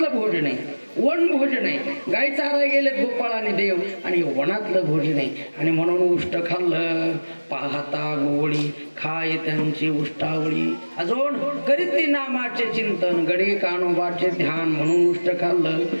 भोजन आहे, वन भोजन आहे. गाई चारायला गेलेत गोपाळ आणि देव आणि वनातलं भोजन आहे. आणि म्हणून उष्ट खाल्लं. पाहता गोवळी खाय त्यांची उष्टावळी. अजून करीत ती नामाचे चिंतन गडे कानोबाचे ध्यान म्हणून उष्ट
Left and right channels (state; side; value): inverted; both; correlation -1.00